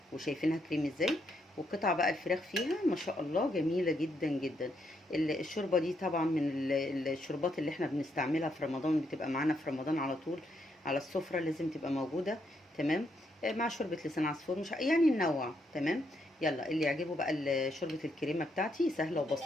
وشايفينها كريم ازاي، وقطع بقى الفراخ فيها ما شاء الله جميله جدا جدا. الشوربه دي طبعا من الشوربات اللي احنا بنستعملها في رمضان، بتبقى معانا في رمضان على طول على السفره، لازم تبقى موجوده. تمام. مع شوربه لسان عصفور، مش يعني ننوع. تمام. يلا اللي يعجبه بقى شوربه الكريمه بتاعتي سهله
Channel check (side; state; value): both; normal; correlation 0.77